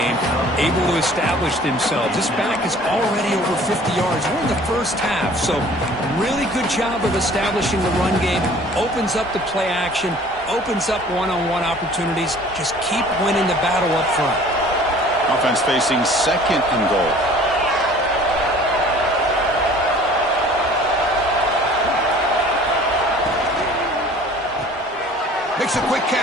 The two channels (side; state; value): both; normal; correlation 0.50